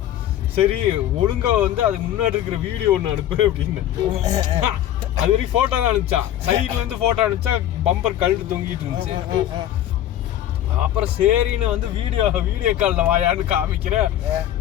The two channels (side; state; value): right; quieter; 12.0 dB